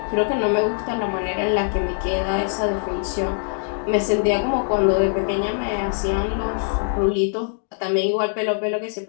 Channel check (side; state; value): right; silent; digital silence